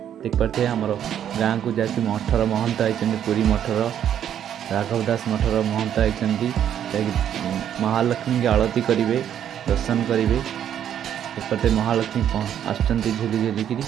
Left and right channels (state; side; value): quieter; left; 9.8 dB